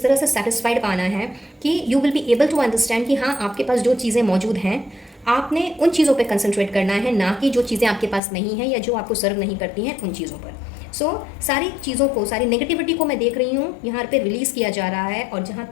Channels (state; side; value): drops out; right; at 8.2 s